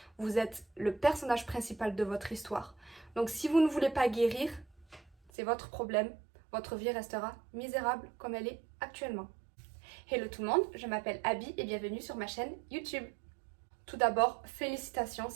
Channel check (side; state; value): left; drops out; at 5.3 s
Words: vous êtes le personnage principal de votre histoire. Donc si vous ne voulez pas guérir, c'est votre problème, votre vie restera misérable comme elle est actuellement. Hello tout le monde, je m'appelle Abby et bienvenue sur ma chaîne YouTube. Tout d'abord, félicitations